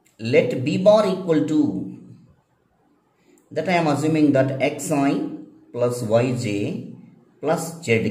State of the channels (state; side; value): identical; both; correlation 1.00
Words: Let B bar equal to, that I am assuming that xi plus yj plus